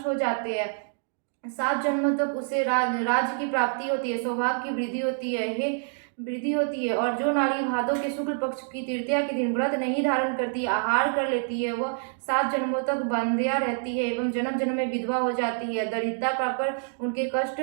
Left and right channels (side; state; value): left; silent; digital silence